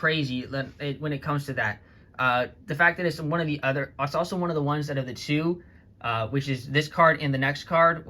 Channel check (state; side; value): identical; both; correlation 1.00